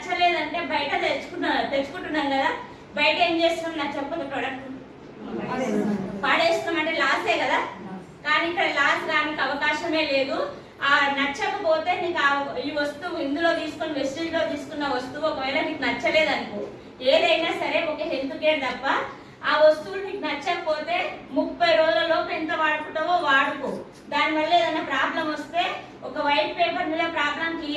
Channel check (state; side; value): identical; both; correlation 1.00